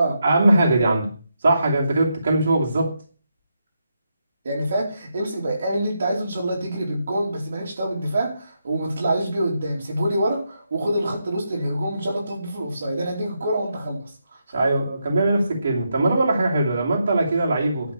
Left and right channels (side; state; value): both; inverted; correlation -0.82